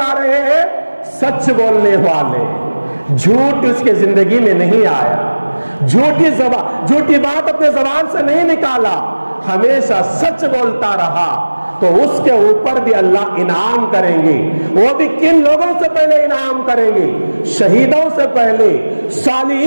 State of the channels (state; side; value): inverted; both; correlation -1.00